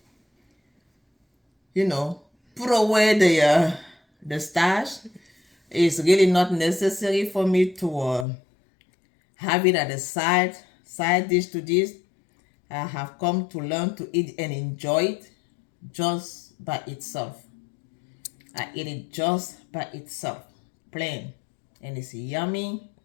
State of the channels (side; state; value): right; drops out; at 8.2 s